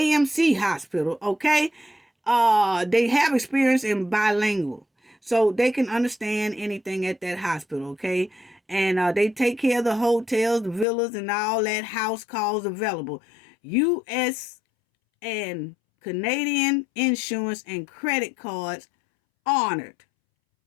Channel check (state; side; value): drops out; right; at 10.9 s